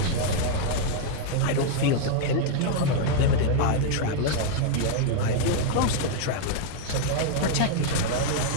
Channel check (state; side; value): different; both; correlation -0.01